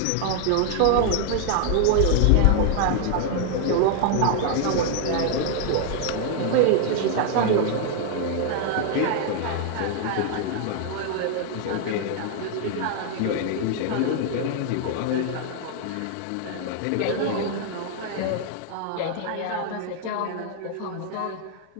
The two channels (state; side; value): different; both; correlation 0.00